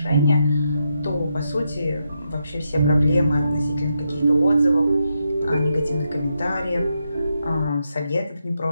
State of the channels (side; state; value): both; inverted; correlation -0.83